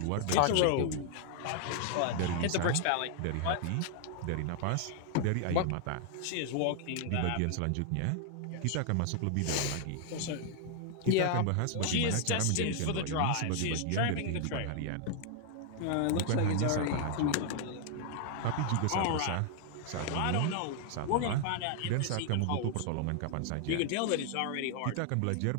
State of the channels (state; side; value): different; both; correlation 0.00